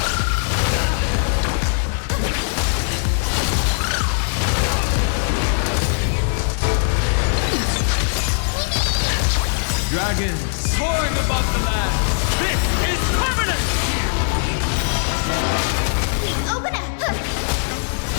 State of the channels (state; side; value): silent; right; 62 dB below the other